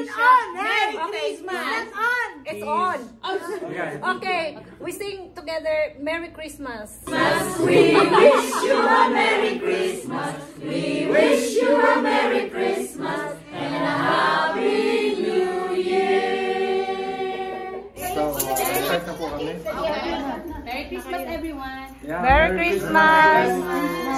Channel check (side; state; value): both; identical; correlation 1.00